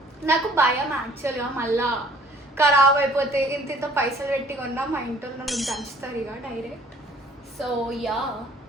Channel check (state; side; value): normal; both; correlation 0.55